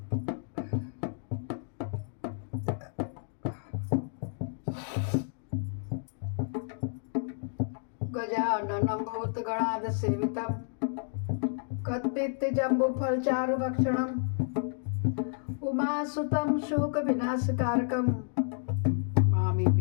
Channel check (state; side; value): silent; right; digital silence